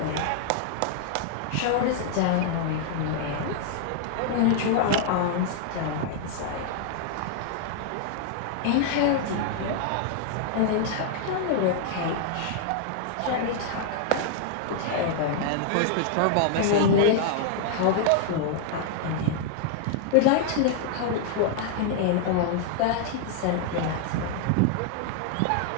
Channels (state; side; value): different; both; correlation 0.00